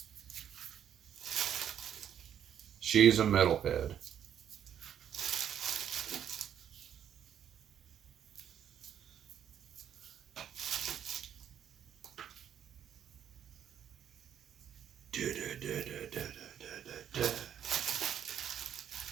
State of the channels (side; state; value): left; quieter; 9.4 dB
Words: She's a metalhead.